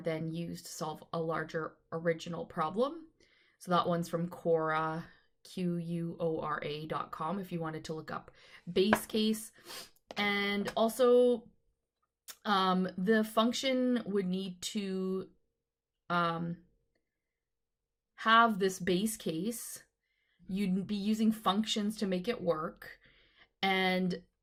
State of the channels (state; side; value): identical; both; correlation 1.00